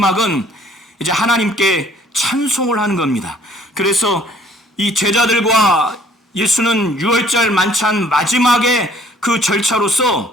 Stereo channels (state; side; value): normal; both; correlation 0.59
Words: 이제 하나님께 찬송을 하는 겁니다. 그래서 이 제자들과 예수는 유월절 만찬 마지막에 그